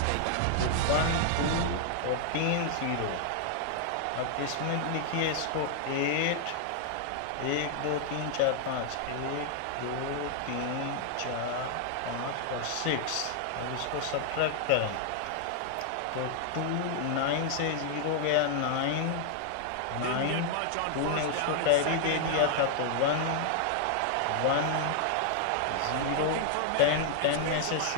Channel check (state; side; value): different; both; correlation 0.00